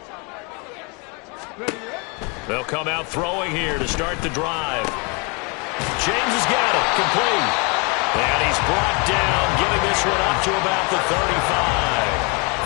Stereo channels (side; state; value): right; quieter; 31.9 dB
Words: They'll come out throwing here to start the drive. James has got it, complete. And he's brought down, getting this one up to about the 35.